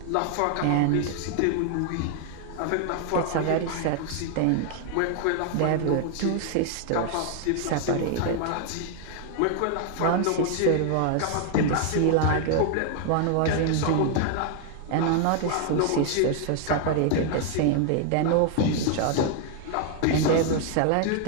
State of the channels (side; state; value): both; different; correlation 0.00